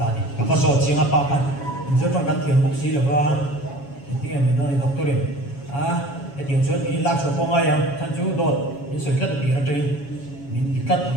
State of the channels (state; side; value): late; right; 7.2 ms